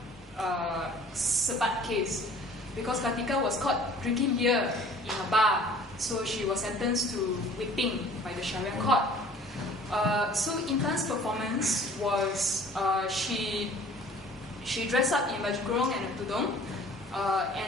Sebat case, because Kartika was caught drinking beer in a bar, so she was sentenced to whipping by the Sharia court. So Intan's performance was she dressed up in baju kurung and a tudung,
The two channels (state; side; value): normal; both; correlation 0.50